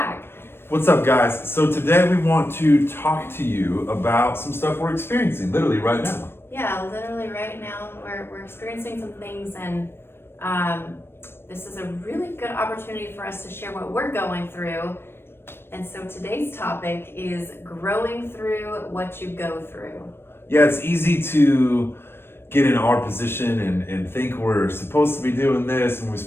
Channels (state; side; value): late; right; 0.11 ms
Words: What's up, guys? So today we want to talk to you about some stuff we're experiencing literally right now. Yeah, literally right now we're experiencing some things, and this is a really good opportunity for us to share what we're going through. And so today's topic is growing through what you go through. Yeah, it's easy to get in our position and think we're supposed to be doing this and we're